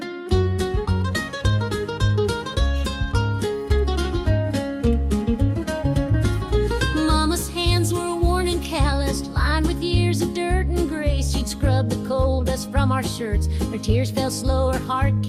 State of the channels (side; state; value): both; identical; correlation 1.00